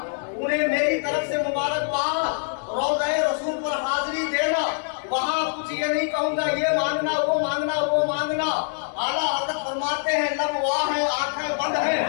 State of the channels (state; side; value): silent; right; digital silence